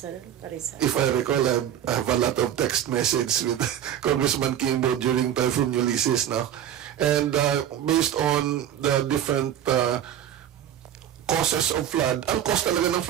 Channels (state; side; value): quieter; left; 10.5 dB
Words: if I recall, I have a lot of text messages with Congressman Kimbo during Typhoon Ulysses now. And based on the different causes of flood, ang cause talaga ng